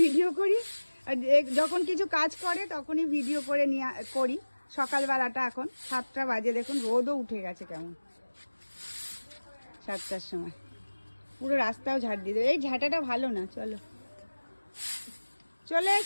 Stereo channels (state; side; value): inverted; both; correlation -1.00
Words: ভিডিও করি, আর যখন কিছু কাজ করে তখনই ভিডিও করে নিয়ে করি। সকালবেলাটা এখন 7টা বাজে, দেখুন রোদও উঠে গেছে কেমন। 7টার সময় পুরো রাস্তাও ঝাড় দিয়ে দেবে। এই ঝাঁটাটা ভালো না, চলো চলে